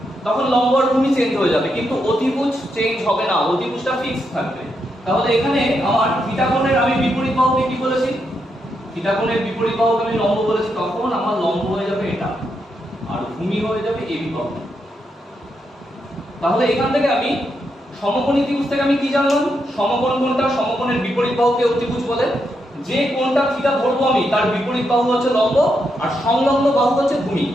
তখন লম্ব আর ভূমি চেঞ্জ হয়ে যাবে, কিন্তু অতিভুজ চেঞ্জ হবে না, অতিভুজটা ফিক্স থাকবে। তাহলে এখানে আমার থিটা কোণের আমি বিপরীত বাহুকে কি বলেছি? থিটা কোণের বিপরীত বাহুকে আমি লম্ব বলেছি, তখন আমার লম্ব হয়ে যাবে এটা আর ভূমি হয়ে যাবে এবি বাহু। তাহলে এখান থেকে আমি সমকোণী ত্রিভুজ থেকে আমি কি জানলাম? সমকোণ কোণটা, সমকোণের বিপরীত বাহুকে অতিভুজ বলে। যে কোণটা থিটা ধরবো আমি, তার বিপরীত বাহু হচ্ছে লম্ব আর সংলগ্ন বাহু হচ্ছে ভূমি।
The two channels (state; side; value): normal; both; correlation 0.82